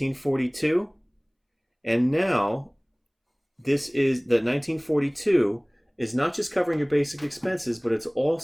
And now, this is the $19.42 is not just covering your basic expenses, but it's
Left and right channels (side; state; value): both; identical; correlation 1.00